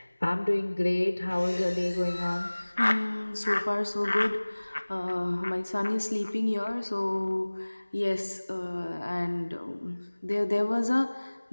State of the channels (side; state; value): both; inverted; correlation -1.00